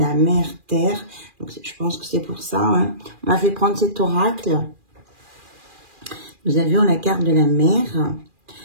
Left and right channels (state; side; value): late; left; 2.4 ms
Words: mère terre. Donc, je pense que c'est pour ça. Hein. On m'a fait prendre cet oracle. Nous avions la carte de la mère